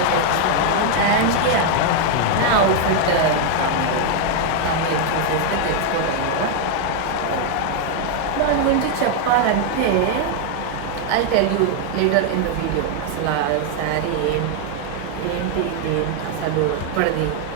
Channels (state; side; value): different; both; correlation 0.00